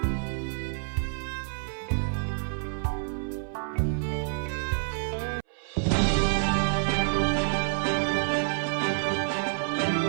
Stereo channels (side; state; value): left; silent; 59 dB below the other